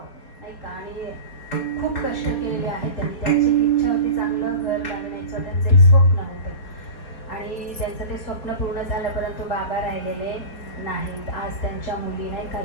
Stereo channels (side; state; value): right; late; 4.2 ms